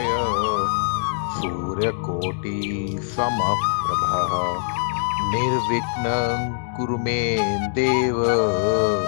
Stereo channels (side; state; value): right; silent; digital silence